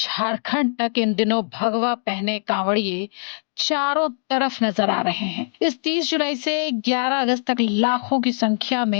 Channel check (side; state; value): right; silent; digital silence